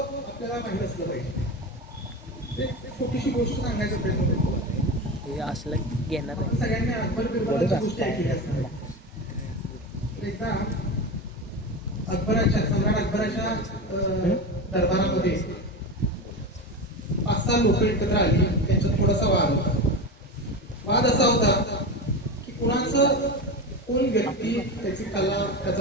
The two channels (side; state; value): both; normal; correlation 0.22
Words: माहीत असलं पाहिजे. एक छोटीशी गोष्ट सांगायचा प्रयत्न करतो. असलं घेणार आपण सगळ्यांनी अकबर बिरबलाची गोष्टी ऐकली असणार. एकदा सम्राट अकबराच्या दरबारामध्ये 5-6 लोक एकत्र आली. त्यांच्यात थोडासा वाद होता. वाद असा होता की कोण व्यक्ती, त्याची कला,